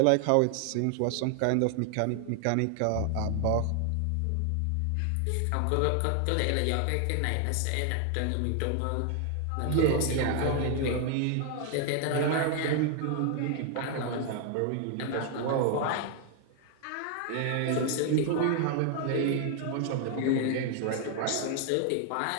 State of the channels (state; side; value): different; both; correlation 0.00